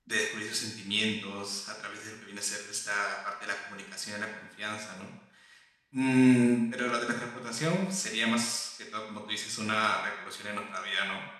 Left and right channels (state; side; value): identical; both; correlation 1.00